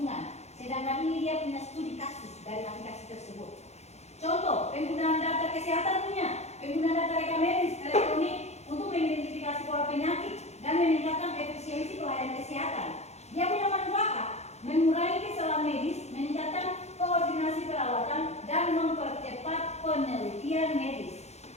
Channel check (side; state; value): right; late; 0.32 ms